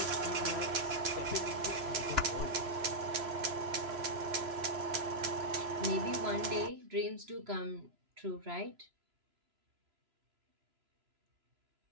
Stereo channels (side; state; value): left; late; 3.0 ms